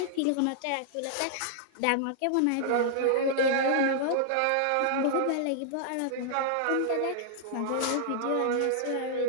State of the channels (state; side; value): different; both; correlation -0.01